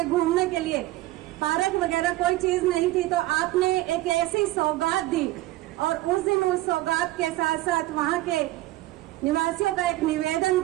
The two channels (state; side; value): quieter; left; 17.3 dB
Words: घूमने के लिए पार्क वगैरह कोई चीज नहीं थी, तो आपने एक ऐसी सौगात दी और उस दिन उस सौगात के साथ साथ वहां के निवासियों का एक निवेदन